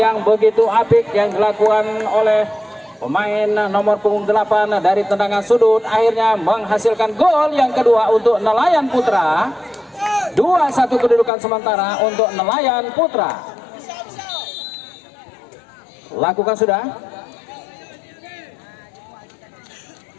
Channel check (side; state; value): right; drops out; at 11.3 s